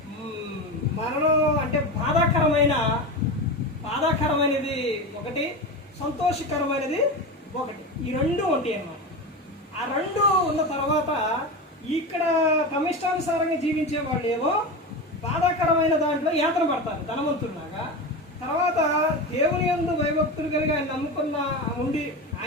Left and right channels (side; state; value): both; normal; correlation 0.22